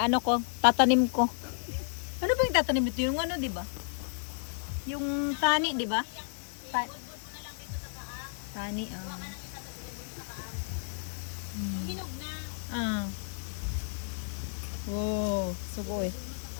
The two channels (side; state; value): right; silent; digital silence